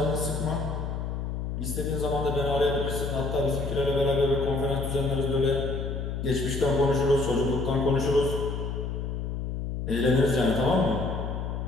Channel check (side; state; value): left; noise; hum, 4 dB below the sound